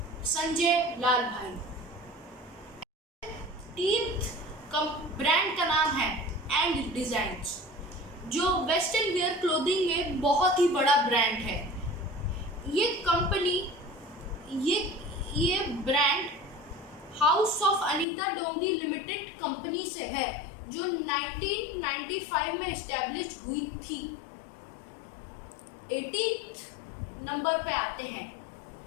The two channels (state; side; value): drops out; right; at 18.1 s